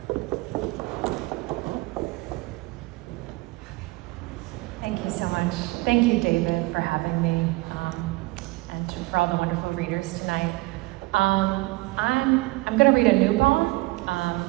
Thank you so much. Thank you, David, for having me, and for all the wonderful readers tonight. I'm going to read a new poem,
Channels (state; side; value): quieter; left; 22.1 dB